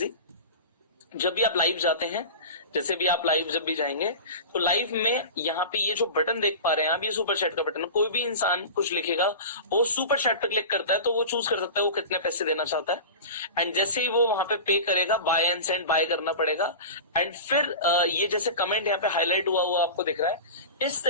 जब भी आप लाइव जाते हैं, जैसे भी आप लाइव जब भी जाएंगे, तो लाइव में यहाँ पे ये जो बटन देख पा रहे हैं आप, ये सुपर चैट का बटन है। कोई भी इंसान कुछ लिखेगा, वो सुपर चैट पे क्लिक करता है, तो वो चूज कर सकता है वो कितने पैसे देना चाहता है। एंड जैसे ही वो वहां पे पे करेगा, बाय एंड सेंड, बाय करना पड़ेगा। एंड फिर ये जैसे कमेंट यहाँ पे हाईलाइट हुआ हुआ आपको दिख रहा है, इस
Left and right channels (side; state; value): both; inverted; correlation -0.31